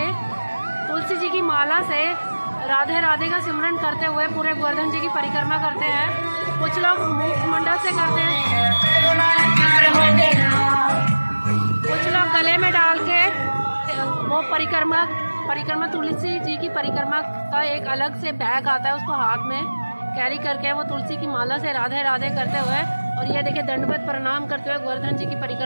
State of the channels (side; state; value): both; inverted; correlation -1.00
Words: तुलसी जी की माला से राधे राधे का सिमरन करते हुए पूरे गोवर्धन जी की परिक्रमा करते हैं। कुछ लोग मुखमंडल से करते हैं, कुछ लोग गले में डाल के वो परिक्रमा तुलसी जी की परिक्रमा का एक अलग से बैग आता है, उसको हाथ में कैरी करके वो तुलसी की माला से राधे राधे करते हुए, और ये देखिए दंडवत प्रणाम करते हुए गोवर्धन जी की